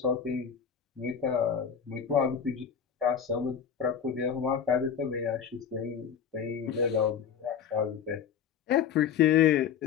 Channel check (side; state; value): right; quieter; 7.7 dB